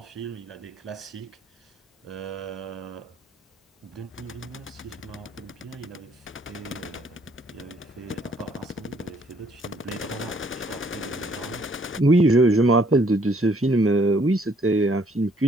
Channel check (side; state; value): both; normal; correlation 0.64